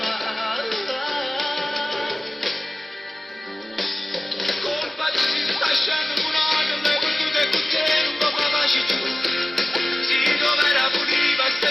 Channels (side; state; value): both; normal; correlation 0.97